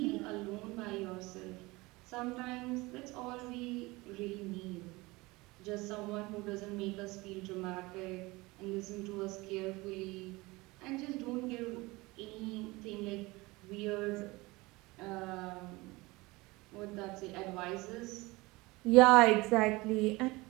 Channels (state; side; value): quieter; left; 22.4 dB